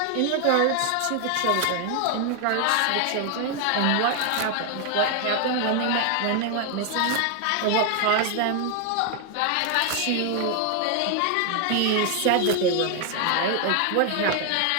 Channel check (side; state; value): both; different; correlation 0.00